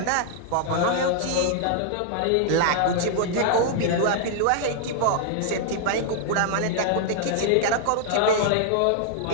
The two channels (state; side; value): different; both; correlation -0.01